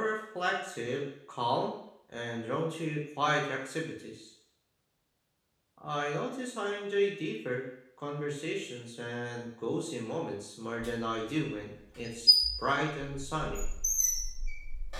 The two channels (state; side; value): identical; both; correlation 1.00